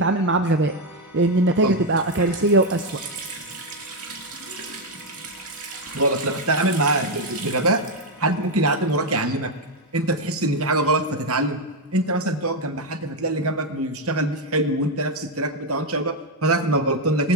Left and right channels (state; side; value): normal; both; correlation 0.05